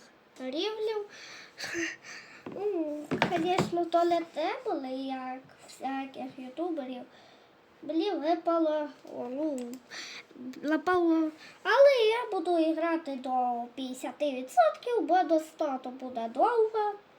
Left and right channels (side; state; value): both; identical; correlation 1.00